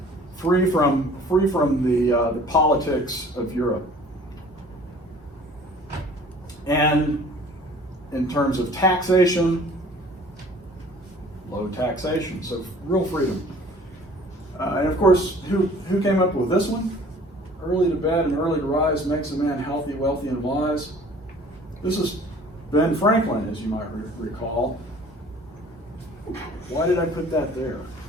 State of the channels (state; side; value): normal; both; correlation 0.50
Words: Free from the politics of Europe. And in terms of taxation, low taxation, so real freedom. And of course, who came up with this one? Early to bed and early to rise makes a man healthy, wealthy, and wise. This is Ben Franklin, as you might recall. Why did I put that there?